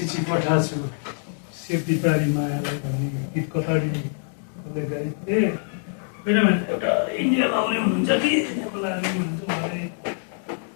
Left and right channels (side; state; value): right; silent; 62 dB below the other